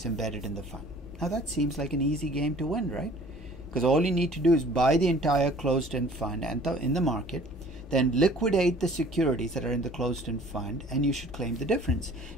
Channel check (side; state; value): both; normal; correlation 0.51